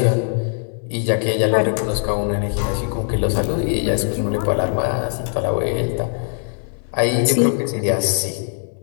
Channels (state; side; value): silent; right; 65 dB below the other